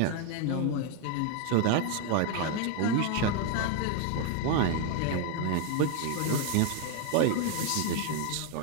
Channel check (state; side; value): different; both; correlation 0.01